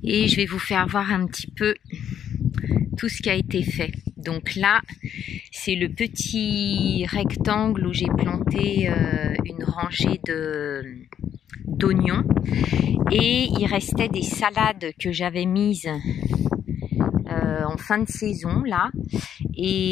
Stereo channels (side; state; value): right; quieter; 9.4 dB